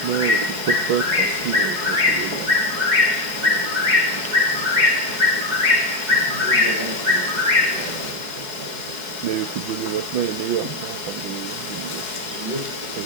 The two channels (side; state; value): left; late; 4.8 ms